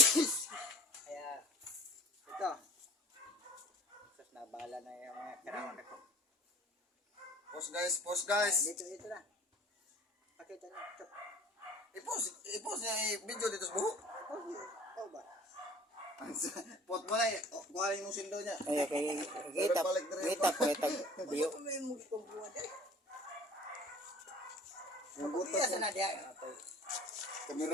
ito. Nabala na yung mga karawan ko. Pause guys. Dito na. Pakita na. I-pause niya video dito sa buho. Oh ba? Pot mo na eh. Kuha yung sindo niya. Ay, kita po itag biyo. Yung butas na diya.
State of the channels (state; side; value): normal; both; correlation 0.46